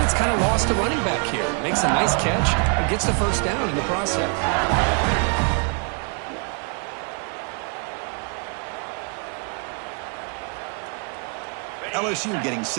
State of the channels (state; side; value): quieter; left; 38.2 dB